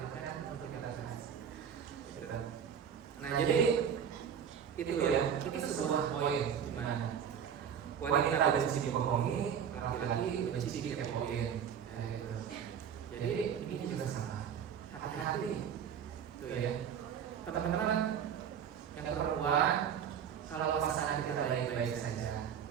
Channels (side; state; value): left; quieter; 8.1 dB